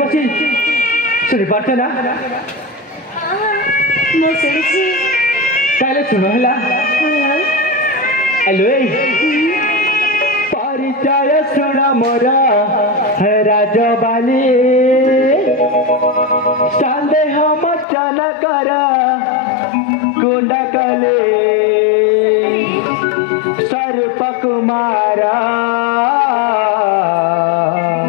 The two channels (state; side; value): drops out; right; at 17.9 s